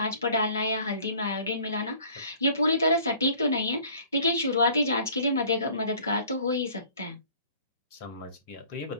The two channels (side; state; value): both; inverted; correlation -0.52